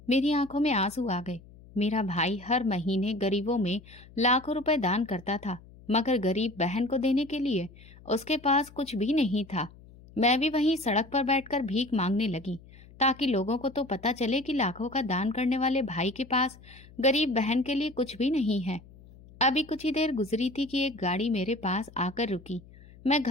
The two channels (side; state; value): left; noise; hum, 22 dB below the sound